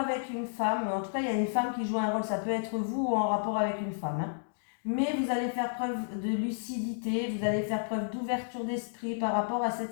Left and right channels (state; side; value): silent; right; digital silence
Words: une femme, en tout cas, il y a une femme qui joue un rôle, ça peut être vous ou en rapport avec une femme, hein. Mais vous allez faire preuve de lucidité, vous allez faire preuve d'ouverture d'esprit par rapport à